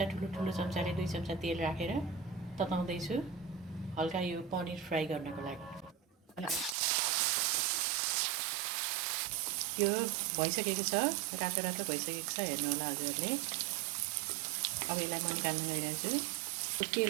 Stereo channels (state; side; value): drops out; left; at 6.8 s